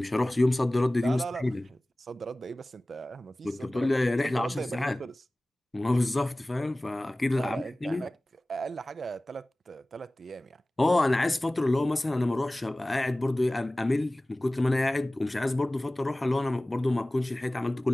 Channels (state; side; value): normal; both; correlation 0.98